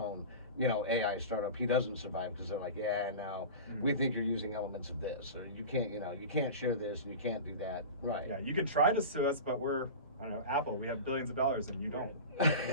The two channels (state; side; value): inverted; both; correlation -0.30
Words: you know, AI startup, he doesn't survive because they're like, yeah, no, we think you're using elements of this, or you can't, you know, you can't share this and you can't do that. Right. Yeah, you can try to sue us, but we're, I don't know, Apple, we have billions of dollars and you